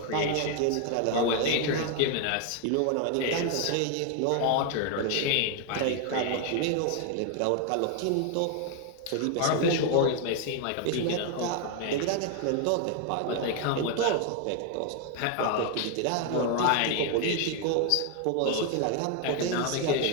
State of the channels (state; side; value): different; both; correlation 0.01